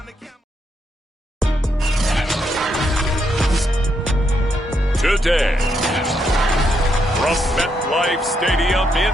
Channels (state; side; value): normal; both; correlation 0.78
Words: the camera. Today, from MetLife Stadium in